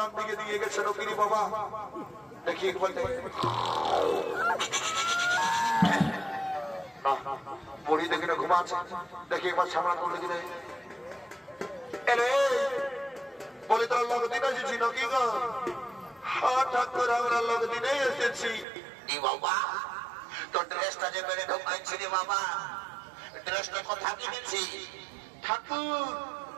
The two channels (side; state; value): left; drops out; at 18.7 s